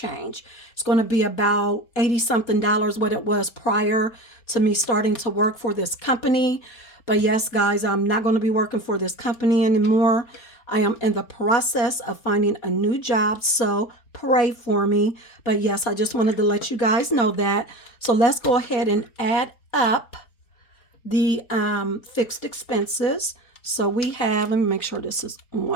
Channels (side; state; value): right; late; 4.3 ms